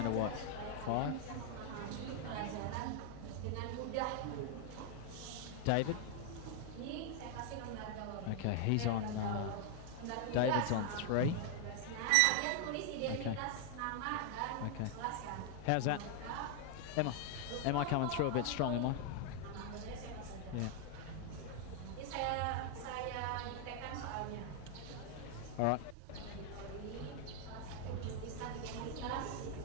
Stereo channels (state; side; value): different; both; correlation 0.00